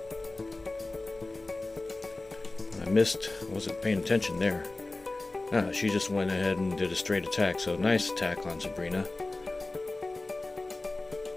I missed, wasn't paying attention there. She just went ahead and did a straight attack, so nice attack on Sabrina.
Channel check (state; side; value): quieter; right; 3.1 dB